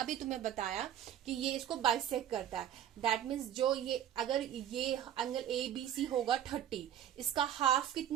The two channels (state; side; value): quieter; left; 10.4 dB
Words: तुम्हें बताया कि ये इसको बाइसेक्ट करता है। दैट मीन्स जो ये अगर ये एंगल ABC होगा 30, इसका हाफ